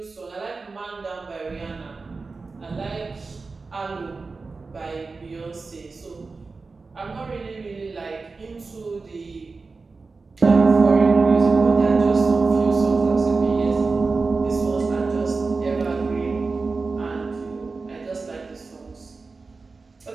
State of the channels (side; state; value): left; quieter; 4.1 dB